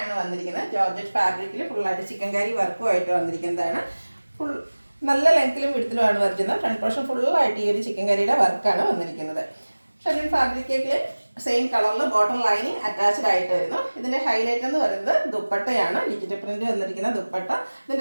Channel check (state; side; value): inverted; both; correlation -1.00